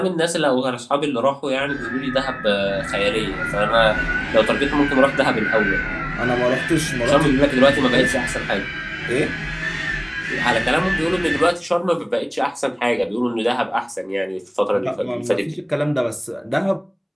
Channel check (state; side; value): identical; both; correlation 1.00